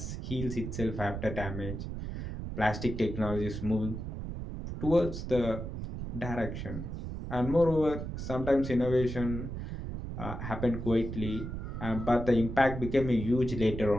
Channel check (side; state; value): right; noise; rumble, 6 dB below the sound